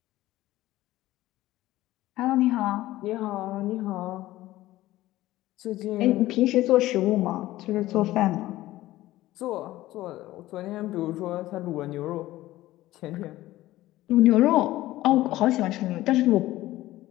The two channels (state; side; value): quieter; right; 16.3 dB